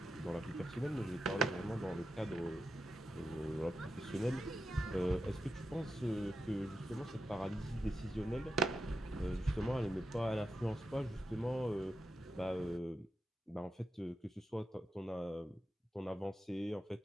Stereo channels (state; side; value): normal; both; correlation 0.87